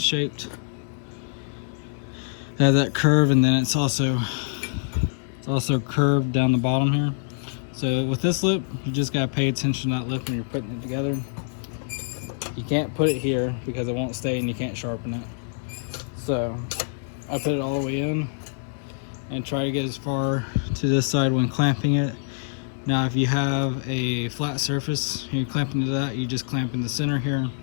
It has that curve, and then it's also curved down the bottom here. So with this lip, you just gotta pay attention to that lip when you're putting it together. You can't put it here because it won't stay and you can't sharpen it. So I put it all the way in and try to get as far to this side when clamping it. Now if you have a flat surface and you clamp into that, you just clamp in the center here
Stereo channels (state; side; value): silent; right; digital silence